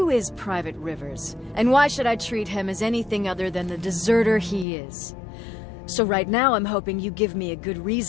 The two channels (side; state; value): right; drops out; at 4.7 s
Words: is Private Rivers? And why should I treat him as anything other than the deserter he is? So right now I'm hoping you give me a good